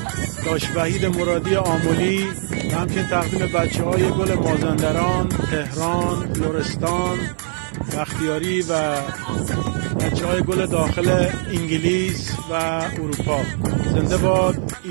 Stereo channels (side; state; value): left; silent; 56 dB below the other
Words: داش وحید مرادی آملی، و همچنین تقدیم بچه های گل مازندران، تهران، لرستان، بختیاری و بچه های گل داخل انگلیس و اروپا. زنده باد